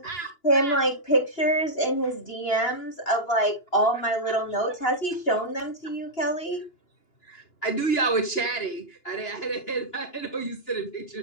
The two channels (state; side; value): late; right; 2.9 ms